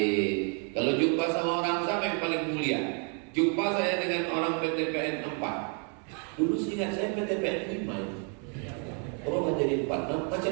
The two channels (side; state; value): left; quieter; 39.7 dB